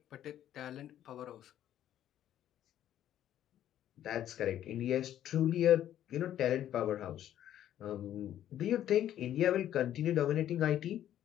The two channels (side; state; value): right; quieter; 11.5 dB